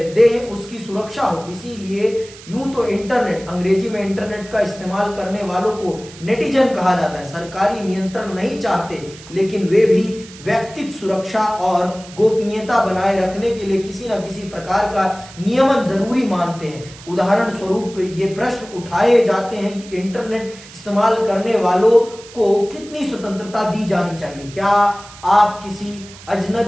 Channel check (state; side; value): noise; right; hiss, 19 dB below the sound